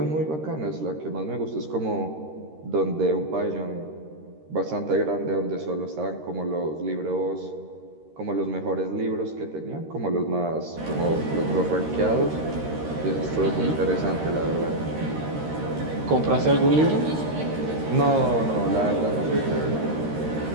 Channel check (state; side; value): late; left; 13 ms